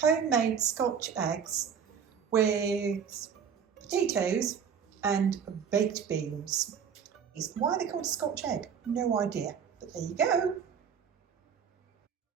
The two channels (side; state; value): left; quieter; 7.2 dB